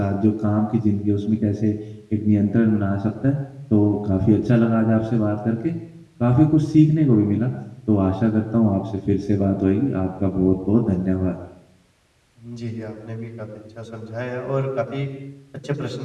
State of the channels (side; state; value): both; identical; correlation 1.00